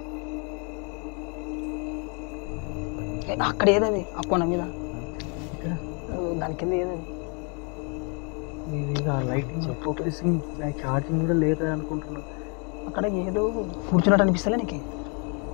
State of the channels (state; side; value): quieter; right; 36.0 dB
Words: అక్కడ ఏదది ఆ కొన మీద దాని కింద ఏదది? లైటింగ్ ఫోకసింగ్ ఛార్జింగ్ కూడా లేదా అనుకుంటున్నా. అక్కడ ఏదో కూర్చున్నట్టు అనిపిస్తలే నీకు?